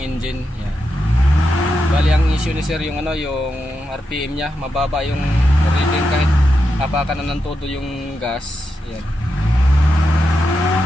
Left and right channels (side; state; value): both; normal; correlation 0.86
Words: Yan. Bali ang issue ni sir yung ano, yung RPM niya, mababa yung reading kahit apakan na ng todo yung gas. Yan.